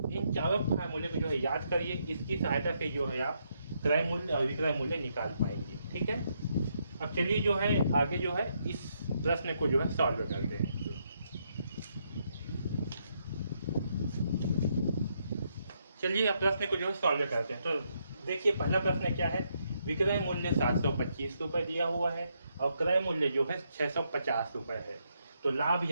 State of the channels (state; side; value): inverted; both; correlation -0.77